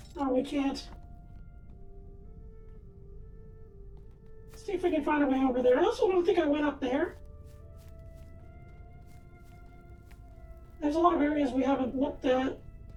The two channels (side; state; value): both; identical; correlation 1.00